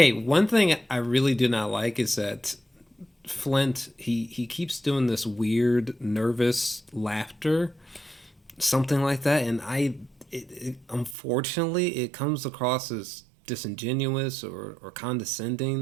one thing I really do not like is that Flint he keeps doing this weird nervous laughter, something like that, and unfortunately it comes across as disingenuous or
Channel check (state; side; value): drops out; left; at 11.2 s